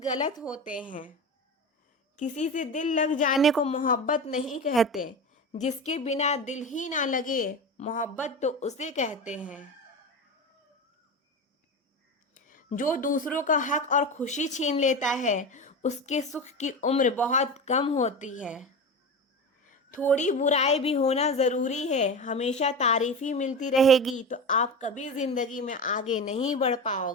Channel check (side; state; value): both; normal; correlation 0.25